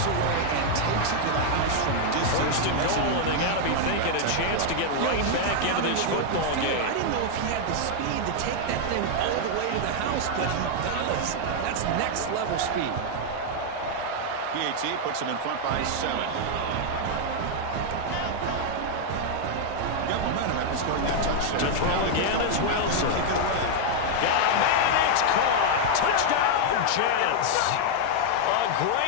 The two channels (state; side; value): different; both; correlation 0.00